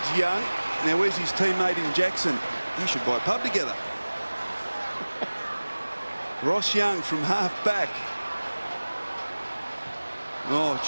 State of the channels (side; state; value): both; inverted; correlation -1.00